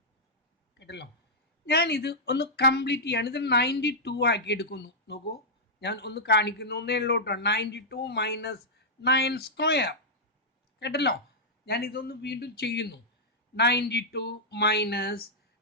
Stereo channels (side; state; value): both; normal; correlation -0.08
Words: കേട്ടല്ലോ, ഞാനിത് ഒന്ന് കംപ്ലീറ്റ് ചെയ്യാണ്. ഇത് 92 ആക്കി എടുക്കുന്നു. നോക്കൂ, ഞാൻ ഒന്ന് കാണിക്കുന്നു എന്നേ ഉള്ളൂ കേട്ടോ. 92 മൈനസ് 9 സ്ക്വയർ. കേട്ടല്ലോ, ഞാൻ ഇതൊന്ന് വീണ്ടും ചെയ്യുന്നു. 92 മൈനസ്